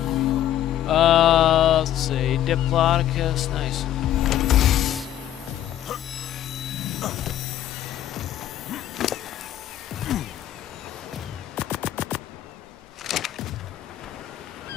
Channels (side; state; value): right; quieter; 11.8 dB